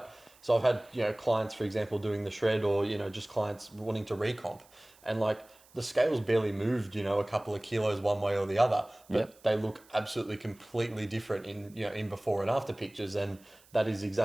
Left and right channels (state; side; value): noise; right; hiss, 27 dB below the sound